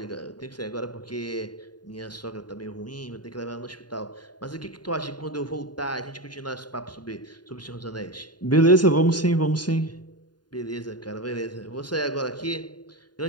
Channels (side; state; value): right; late; 0.70 ms